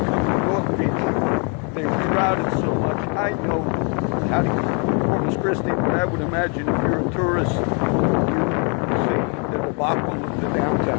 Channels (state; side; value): quieter; right; 37.0 dB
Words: come to North Beach. They're crowded so much. I know how to get to Corpus Christi, but I would imagine if you're a tourist, you see the debacle of the